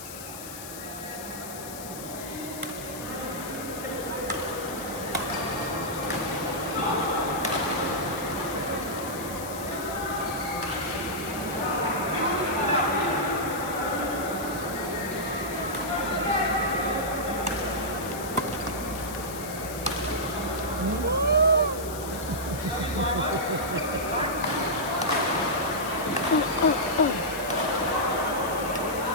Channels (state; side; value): noise; left; hiss, 11 dB below the sound